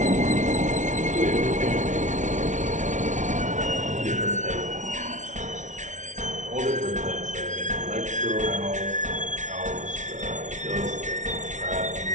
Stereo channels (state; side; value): late; left; 0.36 ms